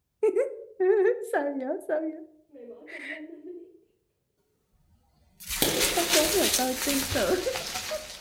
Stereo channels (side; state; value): both; identical; correlation 1.00